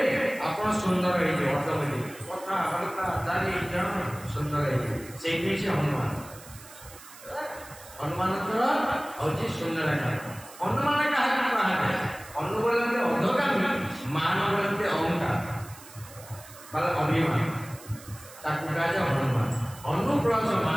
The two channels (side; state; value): right; noise; hiss, 19 dB below the sound